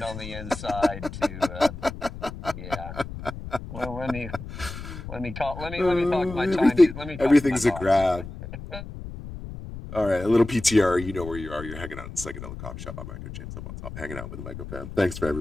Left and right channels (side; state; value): left; noise; rumble, 11 dB below the sound